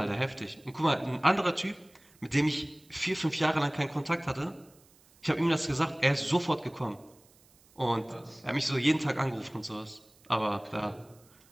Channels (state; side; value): noise; right; hiss, 29 dB below the sound